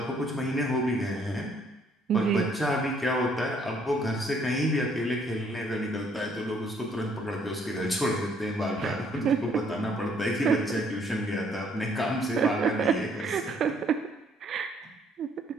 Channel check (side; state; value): both; normal; correlation 0.65